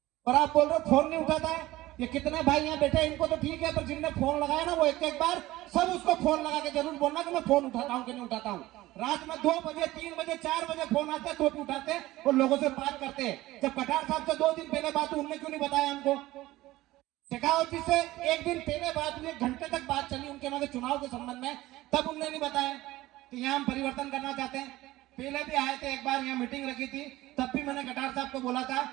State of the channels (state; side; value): quieter; left; 17.3 dB